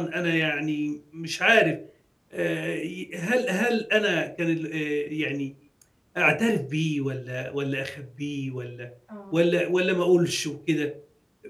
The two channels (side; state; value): both; identical; correlation 1.00